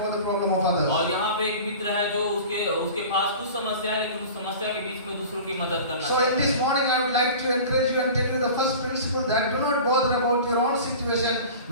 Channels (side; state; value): both; inverted; correlation -0.38